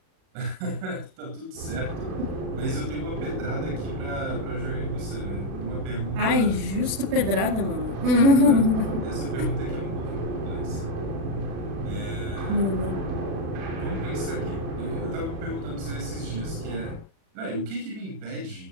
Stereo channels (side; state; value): left; late; 36 ms